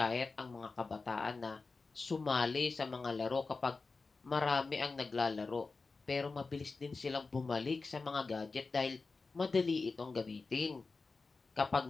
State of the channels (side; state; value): right; quieter; 4.1 dB